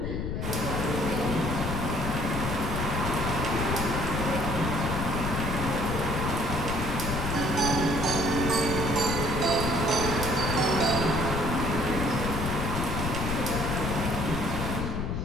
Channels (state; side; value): noise; left; rumble, 2 dB below the sound